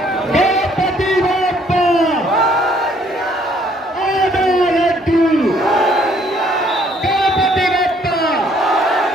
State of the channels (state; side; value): normal; both; correlation 0.63